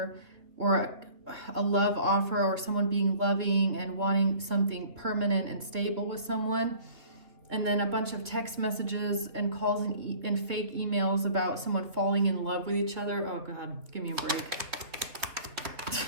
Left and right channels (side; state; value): left; late; 3.2 ms